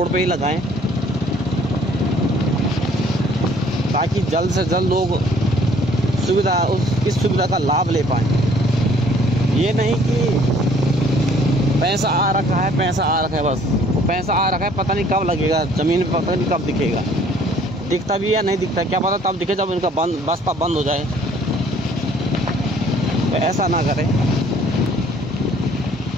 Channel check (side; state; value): both; normal; correlation 0.58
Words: पे ही लगाएं, ताकि जल्द से जल्द लोग इस सुविधा का लाभ ले पाएँ। ये नहीं कि पैसा आ रखा है बस, वो पैसा आ रखा है, पता नहीं कब लगेगा ज़मीन पे, पता नहीं कब दिखेगा, दिखता भी या नहीं दिखता क्या पता, तब दिखे जब इनका बस्ता बंद हो जाए। तो ऐसा ना करें।